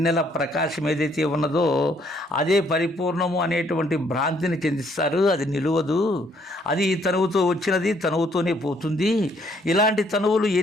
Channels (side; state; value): both; normal; correlation 0.67